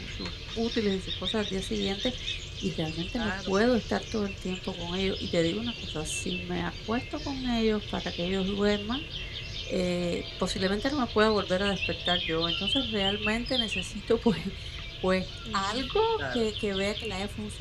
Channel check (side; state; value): both; identical; correlation 1.00